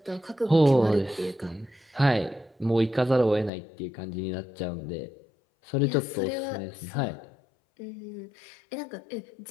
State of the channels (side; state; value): right; drops out; at 3.5 s